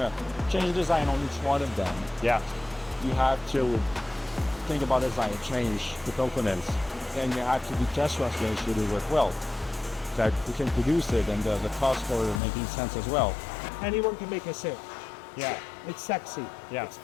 change the design on each one of them, yeah, you have to think about design, change the components, and you have to do test runs to make sure they work well. That you can produce it, and the cost for making sense as well. Anyone can make a sale. Yeah. It's sexy. Yeah. It's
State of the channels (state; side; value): drops out; right; at 12.4 s